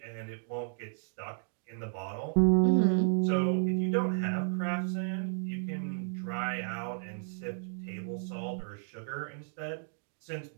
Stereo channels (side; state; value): left; silent; digital silence